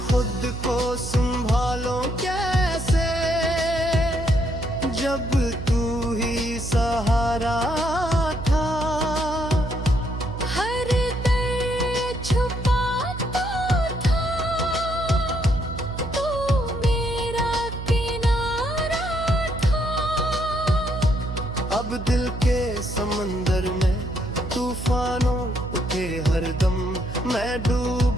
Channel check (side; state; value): right; noise; hum, 8 dB below the sound